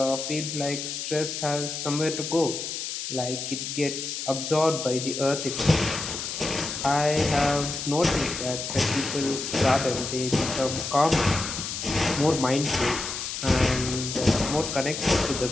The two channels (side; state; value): left; noise; hiss, 5 dB below the sound